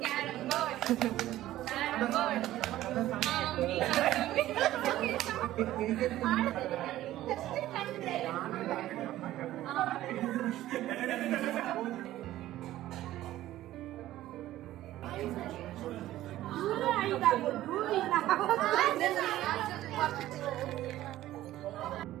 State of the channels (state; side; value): quieter; left; 14.5 dB